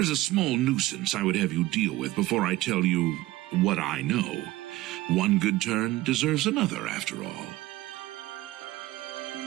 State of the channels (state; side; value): quieter; left; 17.6 dB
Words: is a small nuisance I would have you deal with before I tell you what I know. One good turn deserves another, after all.